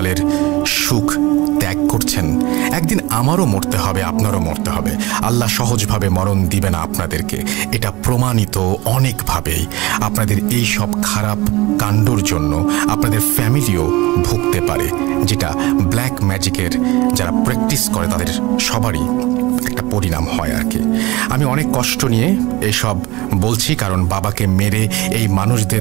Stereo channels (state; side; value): quieter; left; 21.0 dB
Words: সুখ ত্যাগ করছেন। একদিন আমারও মরতে হবে, আপনারও মরতে হবে। আল্লাহ সহজভাবে মরণ দিবে না আপনাদেরকে, এটা প্রমাণিত অনেকভাবেই। আপনাদের এই সব খারাপ কাণ্ডর জন্য আপনাদের ফ্যামিলিও ভুগতে পারে, যেটা ব্ল্যাক ম্যাজিকের যারা প্র্যাকটিস করে তাদের সবারই একটা পরিণাম হয় আর কি। আমি অনেক কষ্ট নিয়ে এসব বলছি, কারণ বাবাকে মেরে এই